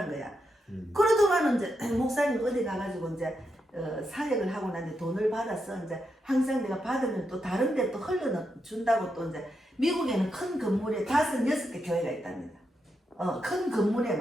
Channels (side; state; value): both; normal; correlation 0.84